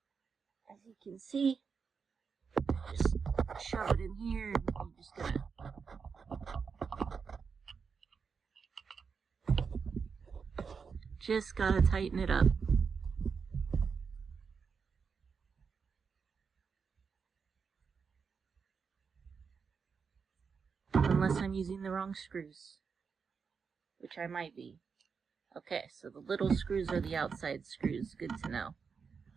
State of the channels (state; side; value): quieter; left; 5.7 dB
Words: As you can see, just shove it in here and I'm just going to gotta tighten it up. Unless I'm using the wrong screws, which I might be. Okay, so the little screws are the outside screws. Good to know.